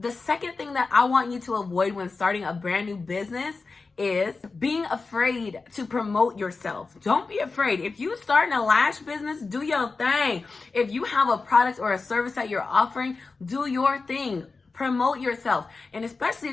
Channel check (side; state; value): right; quieter; 4.1 dB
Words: second thing that I want you to avoid when starting a brand new business is being afraid to promote yourself. Don't be afraid. If you starting a lash business, do your thing. If you have a product or a service that you're offering, do your thing. Promote yourself. And especially